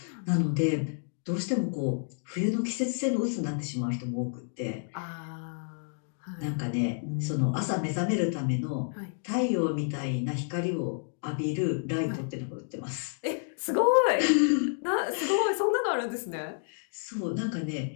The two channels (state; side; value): silent; right; 58 dB below the other